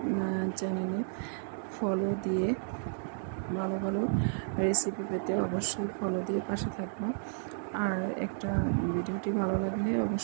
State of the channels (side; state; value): left; silent; digital silence